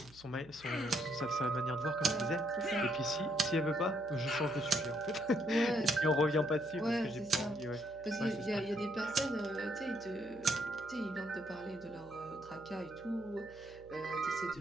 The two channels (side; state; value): right; noise; hum, 22 dB below the sound